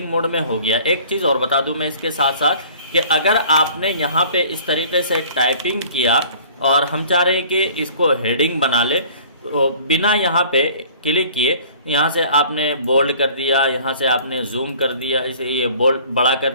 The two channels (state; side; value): inverted; both; correlation -0.49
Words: मोड में हो गया। एक चीज़ और बता दूं मैं इसके साथ साथ कि अगर आपने यहाँ पे इस तरीके से टाइपिंग किया और हम चाह रहे हैं कि इसको हेडिंग बना ले, तो बिना यहाँ पे क्लिक किए यहाँ से आपने बोल्ड कर दिया, यहाँ से आपने जूम कर दिया, इसे ये बोल्ड बड़ा कर